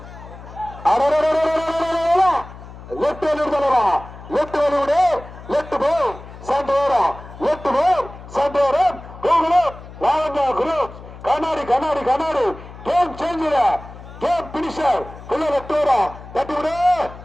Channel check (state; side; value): noise; left; hum, 16 dB below the sound